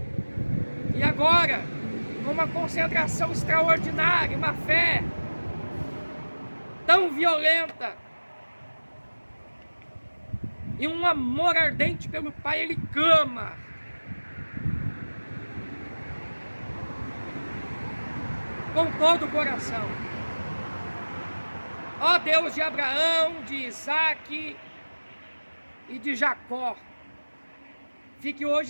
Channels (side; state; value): both; inverted; correlation -1.00